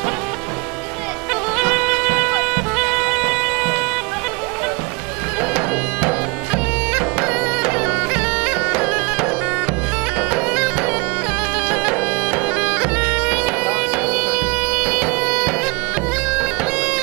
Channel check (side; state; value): left; quieter; 28.5 dB